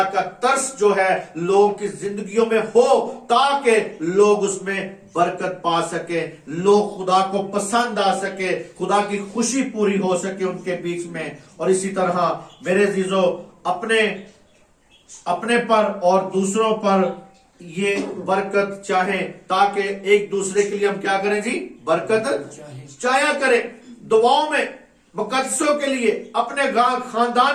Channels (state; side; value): identical; both; correlation 1.00